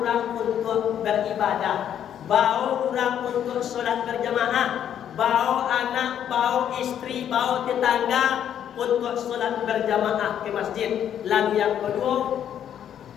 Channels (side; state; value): right; quieter; 9.7 dB